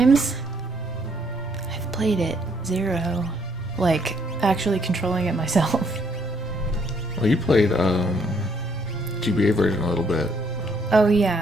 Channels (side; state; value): both; normal; correlation 0.69